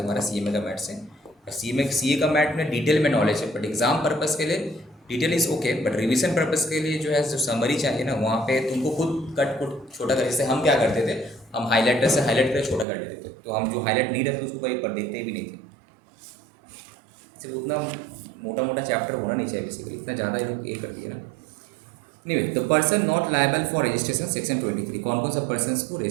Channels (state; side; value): drops out; left; at 12.9 s